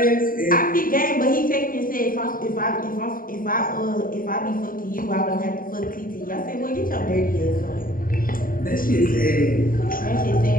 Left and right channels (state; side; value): late; right; 0.41 ms